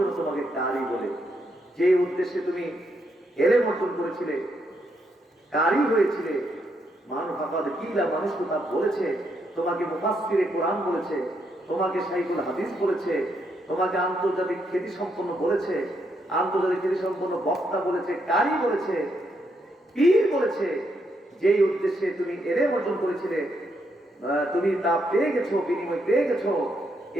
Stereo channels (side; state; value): both; normal; correlation 0.78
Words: তোমাকে কারি বলে। যে উদ্দেশ্যে তুমি এলেম অর্জন করেছিলে, কারি হয়েছিলে, মানুষ আপনাদের কিলা মানুষ তা বলেছে, তোমাকে মুফাসসিরে কোরআন বলেছে, তোমাকে শাইখুল হাদিস বলেছে, তোমাকে আন্তর্জাতিক খ্যাতি সম্পন্ন বলেছে, আন্তর্জাতিক খ্যাতি সম্পন্ন বক্তা বলেছে, কারি বলেছে, পীর বলেছে। যেই উদ্দেশ্যে তুমি এলেম অর্জন করেছিলে, তুমি তা পেয়ে গেছো, বিনিময় পেয়ে গেছো,